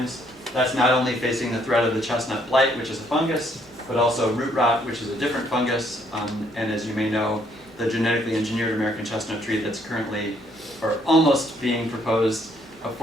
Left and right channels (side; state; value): both; normal; correlation 0.68